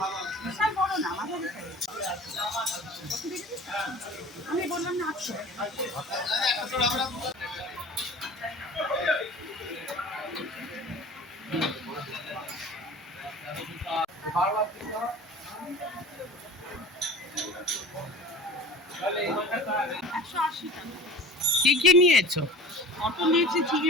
আমি বললাম না আচ্ছা কি কি নিয়েছো? অটো নিয়েছি,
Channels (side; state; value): both; normal; correlation 0.39